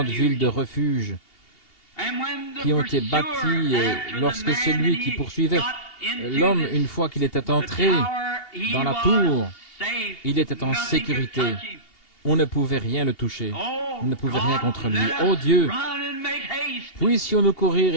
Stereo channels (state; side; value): late; right; 2.8 ms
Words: villes de refuge qui ont été bâties et lorsque celui qui poursuivait l'homme, une fois qu'il était entré dans la tour, il était en sécurité. On ne pouvait rien le toucher. On ne pouvait rien contre lui. Ô Dieu, puissions-nous courir